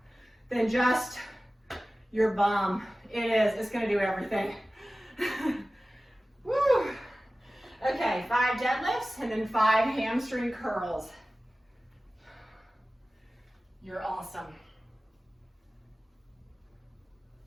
than just your bum. It is. It's going to do everything. Woo! Okay, 5 deadlifts and then 5 hamstring curls. You're awesome.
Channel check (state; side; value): normal; both; correlation 0.96